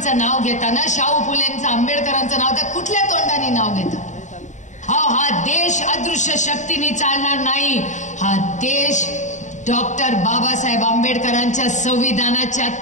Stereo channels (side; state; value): right; late; 0.35 ms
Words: नाव घेताना, शाहू फुलेंचं, आंबेडकरांचं नाव तर कुठल्या तोंडाने नाव घेता. हा देश अदृश्य शक्तीने चालणार नाही. हा देश डॉक्टर बाबासाहेब आंबेडकरांच्या संविधानाच्या